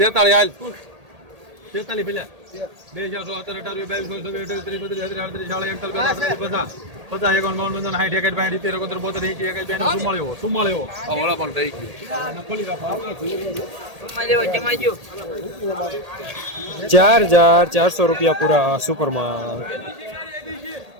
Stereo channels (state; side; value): late; left; 1.8 ms